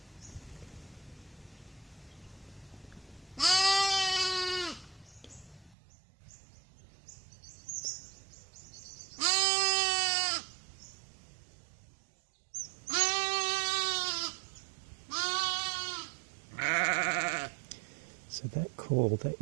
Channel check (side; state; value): left; drops out; at 5.8 s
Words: So that call, that